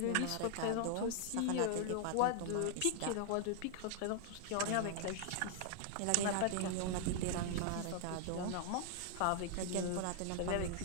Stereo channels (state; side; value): different; both; correlation 0.00